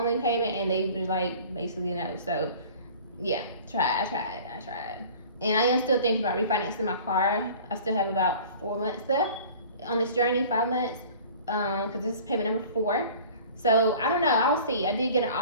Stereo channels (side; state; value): both; inverted; correlation -0.45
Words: payment, and they were like, basically no. So yeah, I tried. And I am still thinking about refinancing my car. I still have about 4 months left on this journey, 5 months, because this is payment number 4. So I don't know, I'll see. I did get an